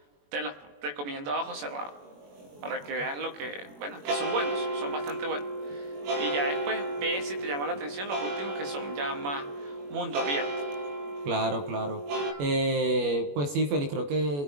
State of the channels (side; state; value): left; late; 21 ms